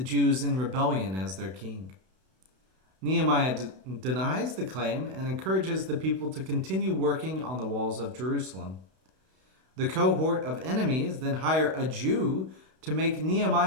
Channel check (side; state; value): left; late; 32 ms